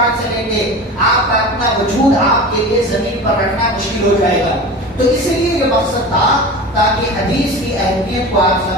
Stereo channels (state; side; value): normal; both; correlation 0.32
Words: سے لیں گے آپ کا اپنا وجود آپ کے لیے زمین پر رکھنا مشکل ہو جائے گا. تو اس لیے یہ مقصد تھا تاکہ حدیث کی اہمیت کو آپ